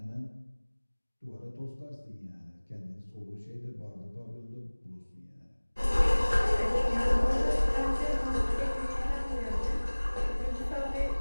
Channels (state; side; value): inverted; both; correlation -1.00